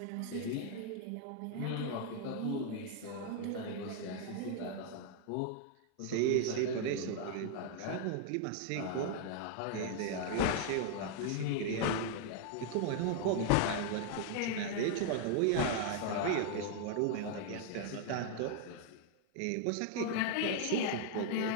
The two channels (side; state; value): both; different; correlation 0.00